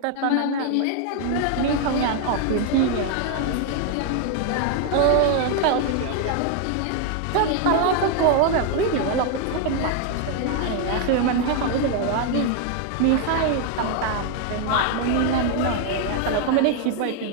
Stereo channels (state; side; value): different; both; correlation 0.00